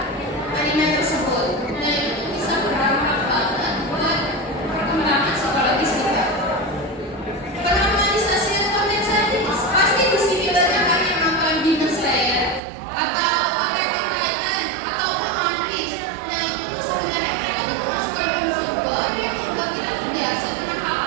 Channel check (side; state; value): left; drops out; at 12.6 s